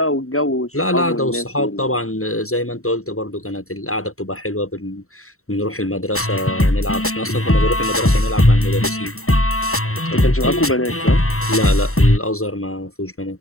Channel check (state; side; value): late; right; 0.63 ms